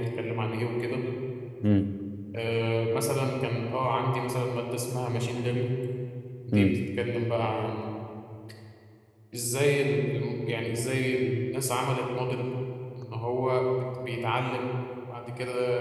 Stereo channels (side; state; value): both; identical; correlation 1.00